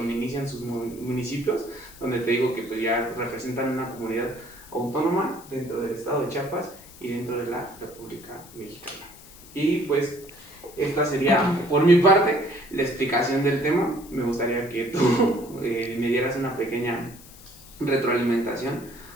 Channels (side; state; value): left; noise; hiss, 20 dB below the sound